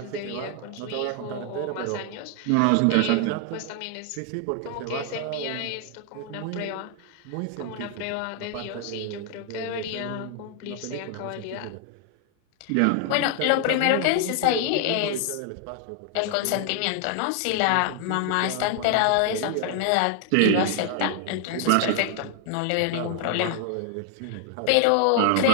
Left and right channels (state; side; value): different; both; correlation 0.00